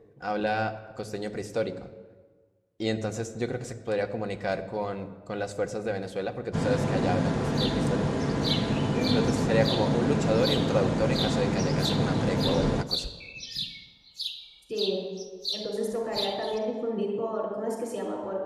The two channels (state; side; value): identical; both; correlation 1.00